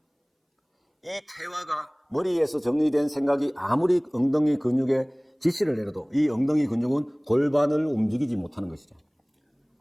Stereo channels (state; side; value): identical; both; correlation 1.00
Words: 이 퇴화가 머리에서 정리된 생각이 아무리 엉덩이 근육에 지시를 내려도 이 엉덩이 근육은 골반을 움직이지 못하는 것이죠.